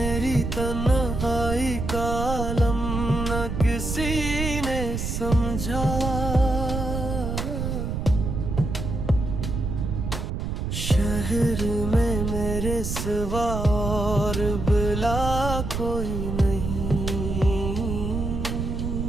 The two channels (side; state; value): right; noise; rumble, 3 dB below the sound